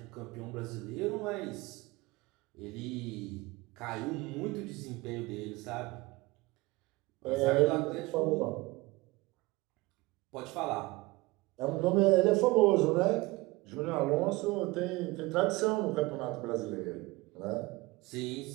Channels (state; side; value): quieter; left; 21.8 dB